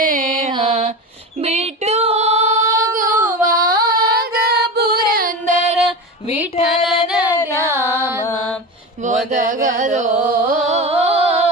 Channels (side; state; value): both; normal; correlation 0.25